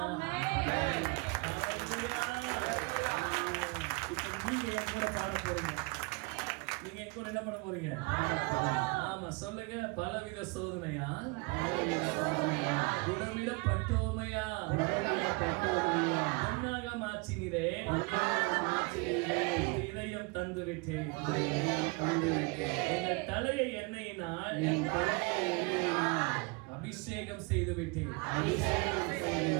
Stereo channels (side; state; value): left; quieter; 28.8 dB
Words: இப்ப நீங்க என் கூட பாட போறீங்க. நீங்க என் கூட என்ன பண்ண போறீங்க? ஆமா சொல்லுங்க, பலவித சோதனையால் குடமிடப்பட்டோமையா பொன்னாக மாற்றினீரே இதயம் தந்து விட்டேன். எங்கள் தலையை எண்ணெயினால் அபிஷேகம் செய்து விட்டேன்.